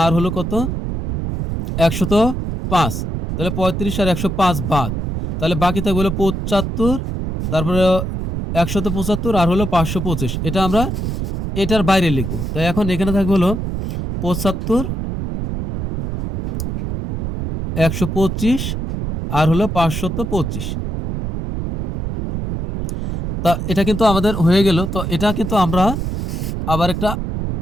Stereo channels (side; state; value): right; noise; rumble, 3 dB below the sound